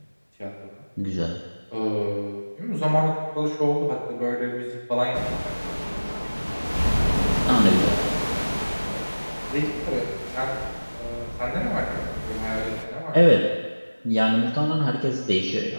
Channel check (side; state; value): both; inverted; correlation -1.00